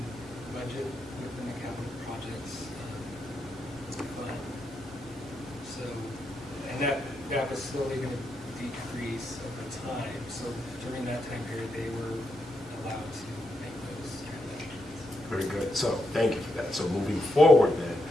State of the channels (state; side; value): normal; both; correlation 0.82